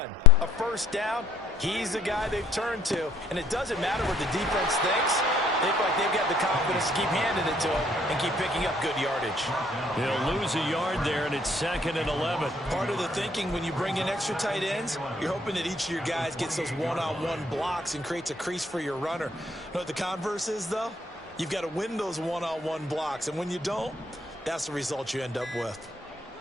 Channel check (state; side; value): normal; both; correlation 0.62